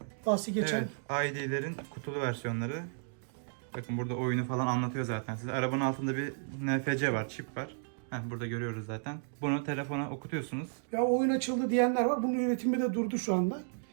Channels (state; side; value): silent; left; digital silence